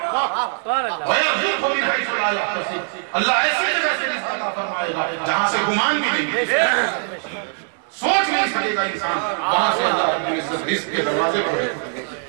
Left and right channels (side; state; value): left; silent; 62 dB below the other